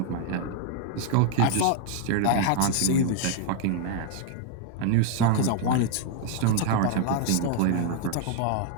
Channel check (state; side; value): different; both; correlation 0.00